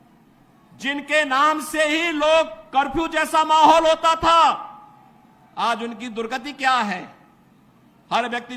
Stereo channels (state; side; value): identical; both; correlation 1.00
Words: जिनके नाम से ही लोग कर्फ्यू जैसा माहौल होता था, आज उनकी दुर्गति क्या है हर व्यक्ति